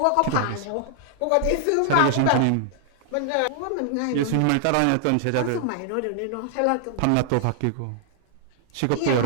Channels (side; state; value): both; different; correlation 0.00